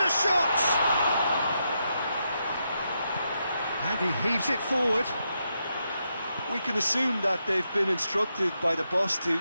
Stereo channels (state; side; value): inverted; both; correlation -0.83